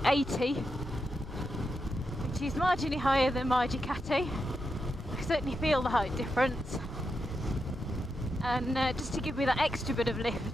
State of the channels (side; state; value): both; normal; correlation 0.86